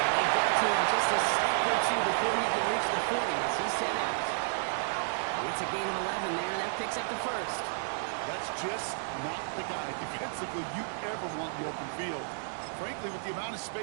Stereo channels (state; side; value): silent; left; digital silence